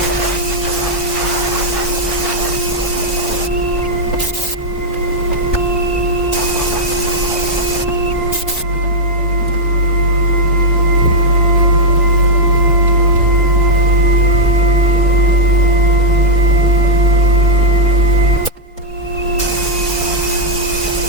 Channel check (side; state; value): both; normal; correlation -0.03